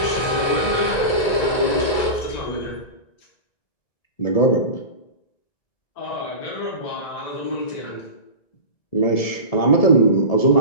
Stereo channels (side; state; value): right; late; 1.9 ms